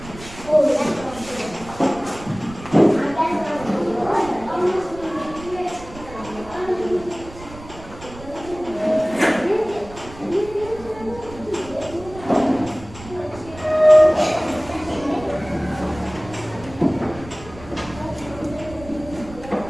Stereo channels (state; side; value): noise; right; rumble, 17 dB below the sound